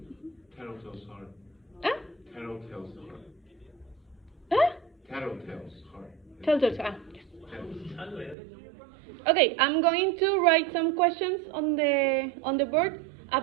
Tattletale's heart. ¿Ah? Tattletale's heart. ¿Ah? Tattletale's heart. Telltales, yes. Tattletale. Okay, I'm going to write some questions on the board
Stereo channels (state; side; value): drops out; left; at 8.3 s